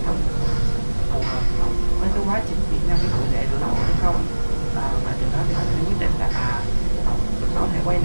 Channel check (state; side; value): inverted; both; correlation -1.00